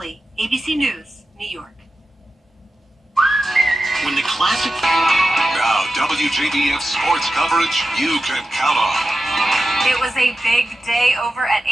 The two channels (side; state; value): both; normal; correlation 0.92